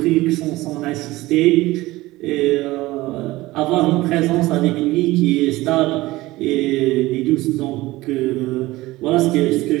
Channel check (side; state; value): left; quieter; 18.8 dB